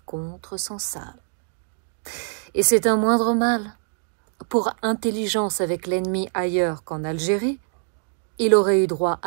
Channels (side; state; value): left; silent; digital silence